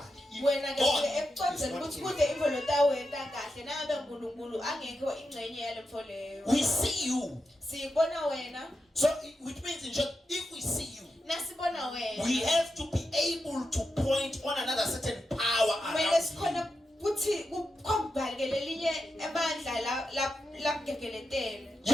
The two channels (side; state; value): both; normal; correlation 0.87